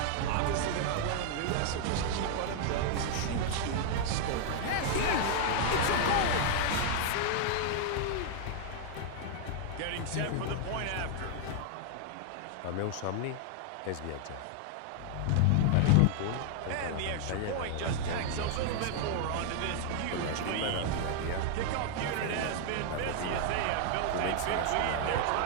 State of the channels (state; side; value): different; both; correlation 0.00